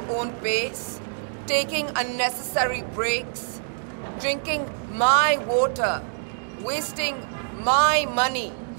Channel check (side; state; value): left; silent; digital silence